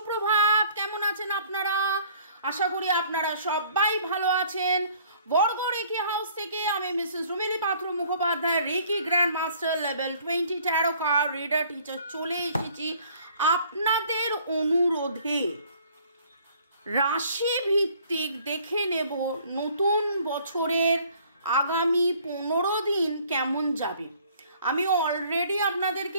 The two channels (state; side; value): inverted; both; correlation -0.57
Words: কেমন আছেন আপনারা? আশা করি আপনারা সবাই ভালো আছেন। বর্গর রেকি হাউস থেকে আমি Mrs Rumili Patra Mukhopadhyay, reiki grand master level 20 tarot card reader teacher চলে এসেছি আপনাদের অনুরোধে। রাশি ভিত্তিক দেখে নেব নতুন বছরের আগামী 15 দিন কেমন যাবে। আমি অলরেডি